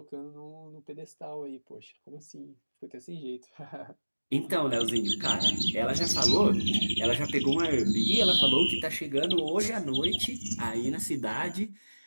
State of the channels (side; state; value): both; inverted; correlation -1.00